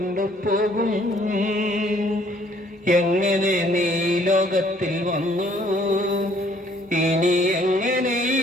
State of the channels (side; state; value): both; normal; correlation 0.61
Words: എങ്ങനെ നീ ലോകത്തിൽ വന്നു, ഇനി എങ്ങനെ ഈ